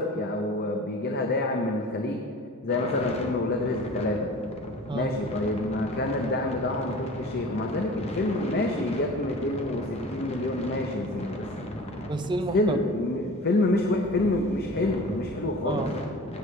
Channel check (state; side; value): normal; both; correlation 0.40